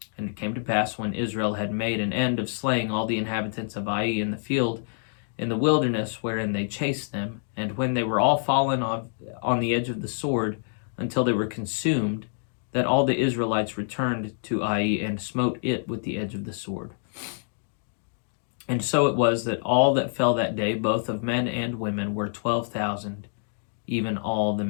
And it came to pass, when Israel had made an end of slaying all the inhabitants of Ai in the field, in the wilderness wherein they chased them, and when they were all fallen on the edge of the sword, until they were consumed, that all the Israelites returned to Ai and smote it with the edge of the sword. And so it was that all that fell that day, both of men and women, were 12,000, even all the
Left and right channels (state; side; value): silent; right; digital silence